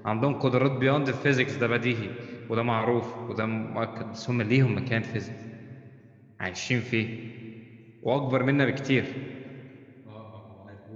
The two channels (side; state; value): both; identical; correlation 1.00